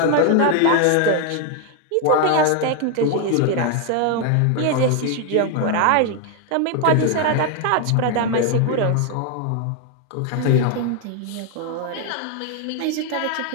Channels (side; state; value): both; different; correlation 0.00